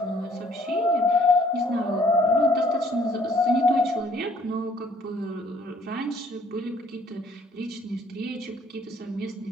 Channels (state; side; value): normal; both; correlation 0.61